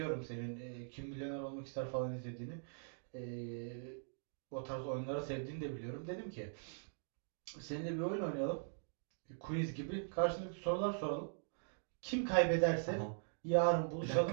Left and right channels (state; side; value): silent; left; digital silence